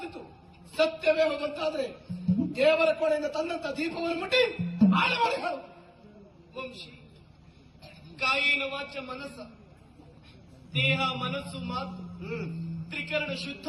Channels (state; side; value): identical; both; correlation 1.00